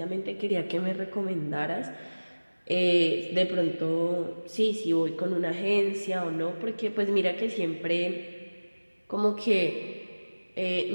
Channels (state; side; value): inverted; both; correlation -1.00